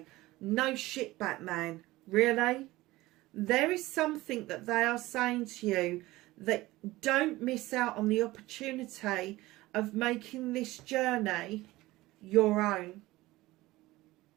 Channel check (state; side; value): quieter; left; 18.6 dB